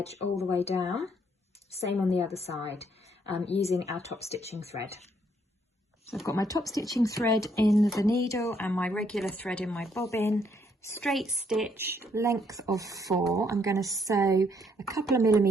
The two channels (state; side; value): normal; both; correlation 0.70